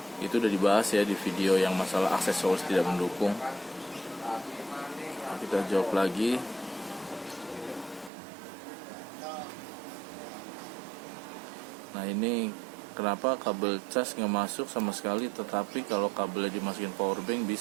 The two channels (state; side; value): drops out; left; at 8.1 s